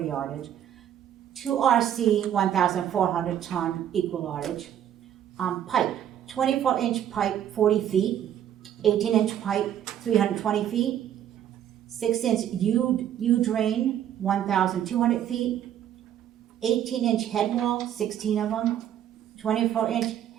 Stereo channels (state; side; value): quieter; left; 10.4 dB